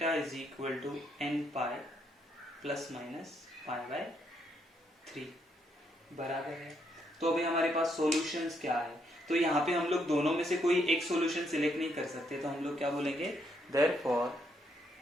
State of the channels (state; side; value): normal; both; correlation 0.75